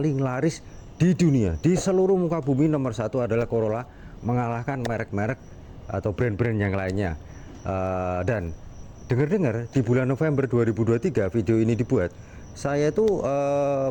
laris di dunia. Di seluruh muka bumi nomor satu adalah Corolla, mengalahkan merek-merek atau brand-brand yang lainnya. Dan dengar-dengar di bulan November 2023 video ini dibuat, saya tuh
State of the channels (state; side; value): identical; both; correlation 1.00